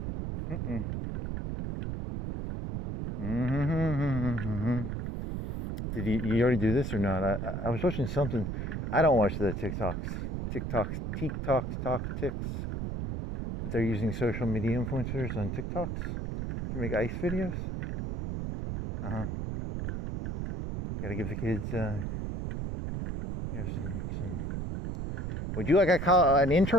Did you already do this or not? I was watching something. I don't watch the TikToks, but they're using social media influencers on TikToks to make ice videos. Got to give the kids, some. Would you like an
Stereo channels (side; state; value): right; noise; rumble, 3 dB below the sound